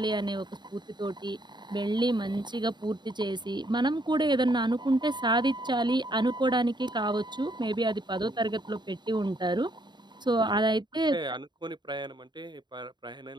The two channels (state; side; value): late; left; 0.21 ms